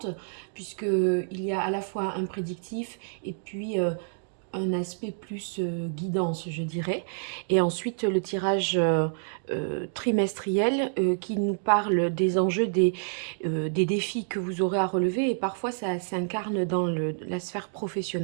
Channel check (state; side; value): silent; left; digital silence